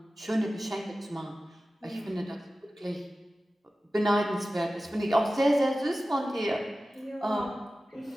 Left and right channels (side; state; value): both; normal; correlation 0.95